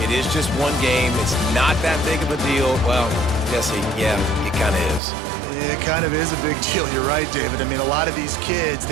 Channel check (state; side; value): drops out; left; at 5.0 s